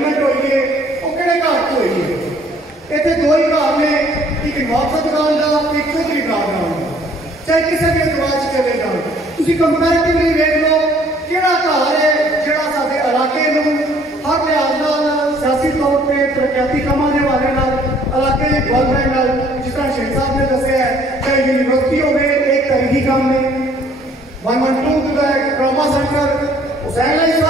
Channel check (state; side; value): normal; both; correlation 0.59